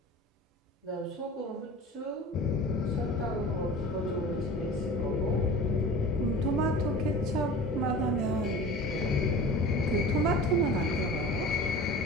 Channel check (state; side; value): normal; both; correlation 0.38